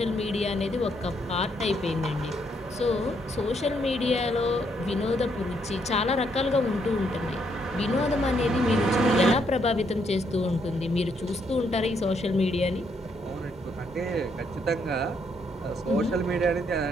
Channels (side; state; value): both; normal; correlation 0.73